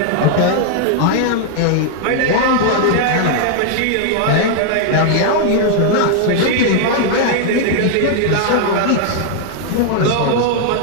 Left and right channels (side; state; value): both; different; correlation 0.00